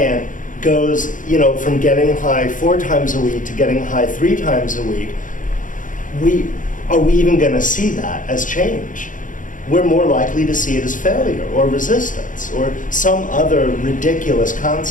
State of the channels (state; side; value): late; right; 0.38 ms